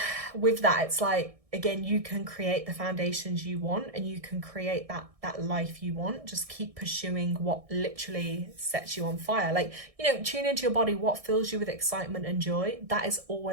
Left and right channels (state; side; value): late; left; 1.6 ms